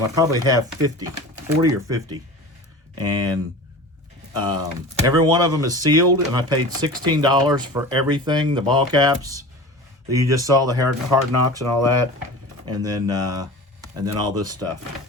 I probably have 40 or 50. And every one of them is sealed, and I paid $16 for everything, the ball caps that you just saw, the hard knocks and all that, and then all this stuff.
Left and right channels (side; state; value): both; normal; correlation 0.36